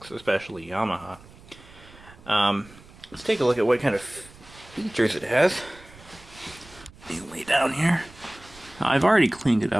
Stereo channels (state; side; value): noise; right; rumble, 22 dB below the sound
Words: especially Yamaha. Let's take a look at what kind of features it has. You lay down here. I've already cleaned it